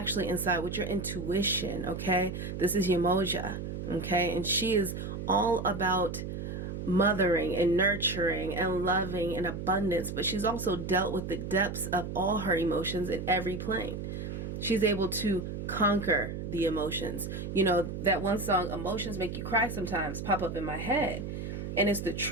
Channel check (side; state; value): right; noise; hum, 6 dB below the sound